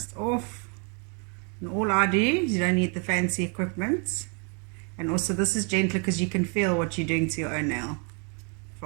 off. And all I do is, you don't need the fancy equipment. And also this is gentler because you can feel what you're doing to your own nail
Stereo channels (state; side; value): quieter; left; 37.0 dB